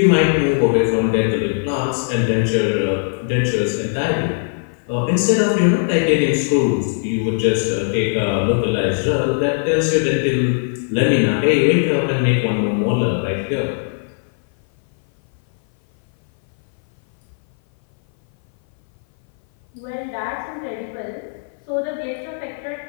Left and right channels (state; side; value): silent; right; 59 dB below the other